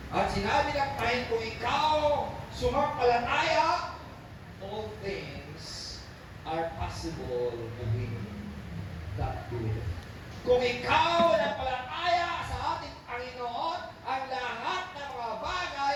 at sinabi ng Panginoon, kung ikaw sumampalataya, all things are possible to him that believe. Kung ikaw nampalataya sa ating Panginoon, ang lahat ng mga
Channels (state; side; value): identical; both; correlation 1.00